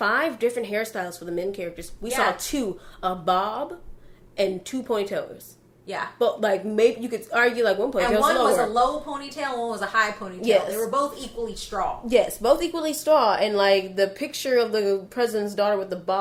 hairstyles for the men characters. We saw 2, a bob and 2 ponytails. Yeah. But, like, maybe you could argue, like, one ponytail and one was a low ponytail, one was a high ponytail. Yes. They were both equally straw. Yes, both equally straw. And, like, the picture of the president's daughter with the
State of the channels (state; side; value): identical; both; correlation 1.00